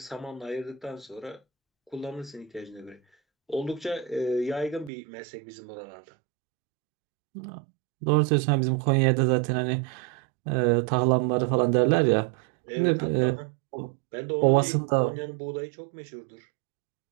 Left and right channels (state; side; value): drops out; left; at 4.9 s